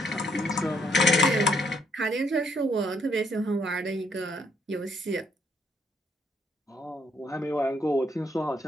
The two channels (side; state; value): both; normal; correlation 0.71